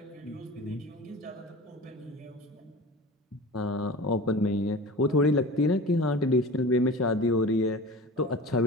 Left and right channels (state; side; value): normal; both; correlation 0.36